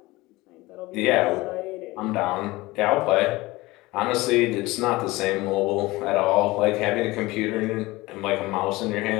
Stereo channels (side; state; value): right; quieter; 20.4 dB